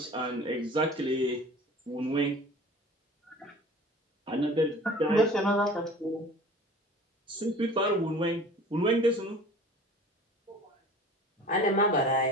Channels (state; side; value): normal; both; correlation 0.43